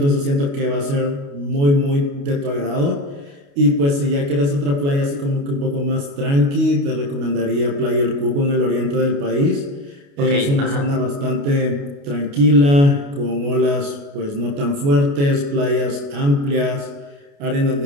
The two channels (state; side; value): late; left; 28 ms